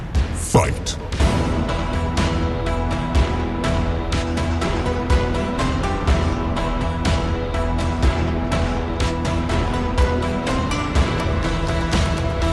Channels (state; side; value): identical; both; correlation 1.00